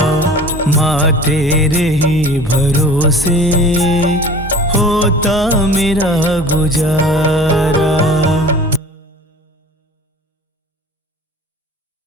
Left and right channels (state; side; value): normal; both; correlation 0.43